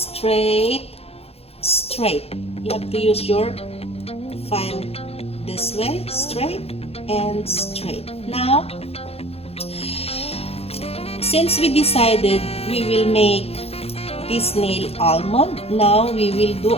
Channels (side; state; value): right; late; 0.29 ms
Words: straight. You have to use your file this way, straight and straight. Now, since we decided we will make this nail almond, now we will do